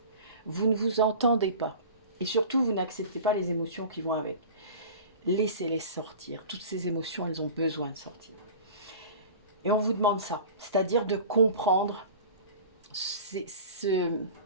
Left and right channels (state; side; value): inverted; both; correlation -0.38